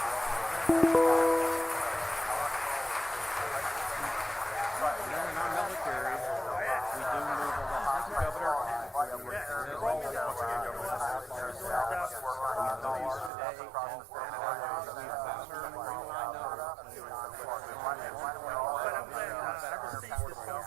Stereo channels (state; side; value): drops out; left; at 13.3 s